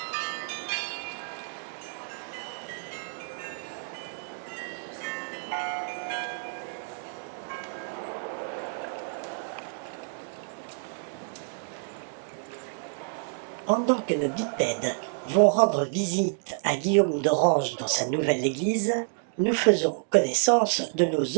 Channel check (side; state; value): left; silent; digital silence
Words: Pendant que nos bipèdes vont rendre visite à Guillaume d'Orange dans sa nouvelle église, nous faisons connaissance de nos